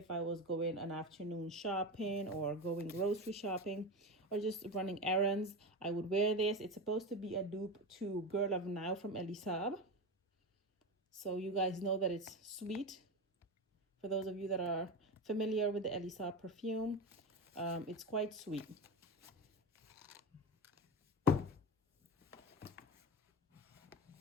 I was going an afternoon shopping or going grocery shopping or just running errands. I would wear this. It's supposed to be a dupe to Girl of Now from Elisab. So you guys know that it's sweet. For those of you that are familiar with the Elisab perfume, it's quite sweet.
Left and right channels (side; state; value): both; normal; correlation 0.21